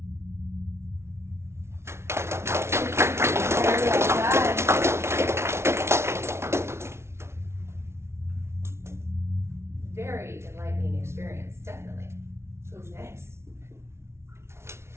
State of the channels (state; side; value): late; left; 0.13 ms